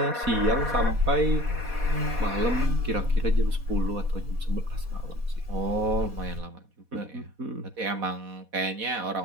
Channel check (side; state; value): left; late; 4.1 ms